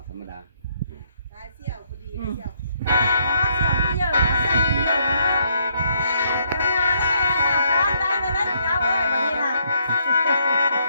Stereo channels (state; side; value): inverted; both; correlation -0.72